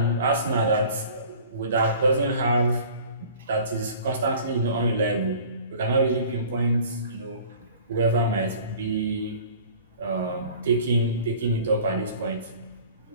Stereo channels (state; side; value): inverted; both; correlation -0.46